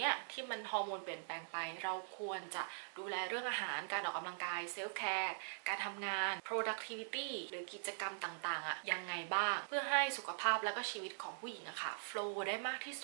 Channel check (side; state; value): left; silent; digital silence